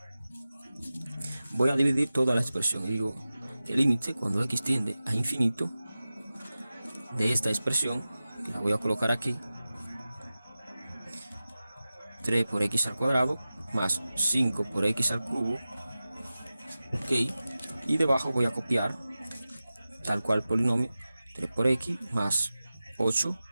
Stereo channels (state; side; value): inverted; both; correlation -0.95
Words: Voy a dividir toda la expresión y digo que el límite cuando x tiende a infinito de esta expresión, que la voy a colocar aquí, 3 por x al cuadrado más 5 por x al cubo, ok, y debajo voy a copiar tal cual polinomio, 3 por x más 8